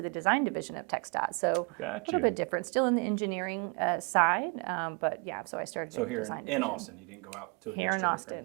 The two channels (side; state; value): left; quieter; 33.1 dB